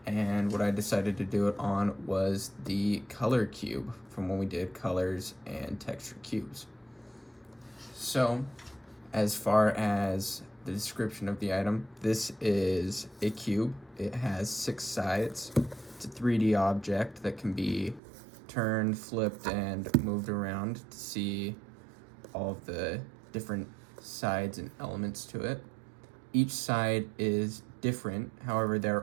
and what I decided to do it on was the color cube from when we did colors and texture cubes. So, as far as the description of the item, this is a cube. It has 6 sides. It's a 3D object that can be turned, flipped, and moved around to see all of the different sides and elements to it. Each side is different, however, they're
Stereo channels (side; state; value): left; drops out; at 18.0 s